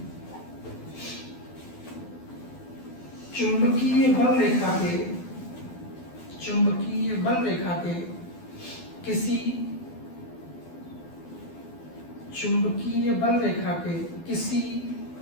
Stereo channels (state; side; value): late; right; 12 ms